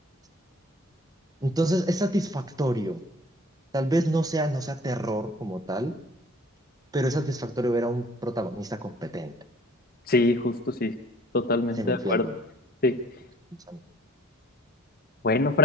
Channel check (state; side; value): normal; both; correlation 0.53